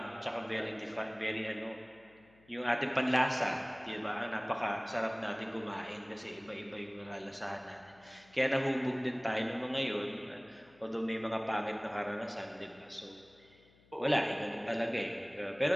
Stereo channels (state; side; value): noise; left; hum, 29 dB below the sound